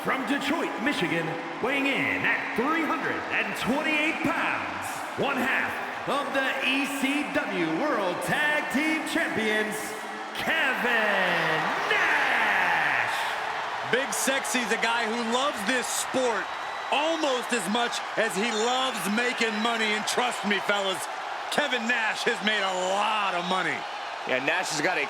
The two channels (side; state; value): both; identical; correlation 1.00